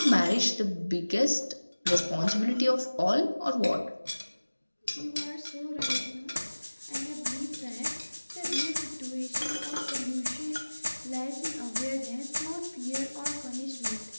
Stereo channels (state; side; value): inverted; both; correlation -1.00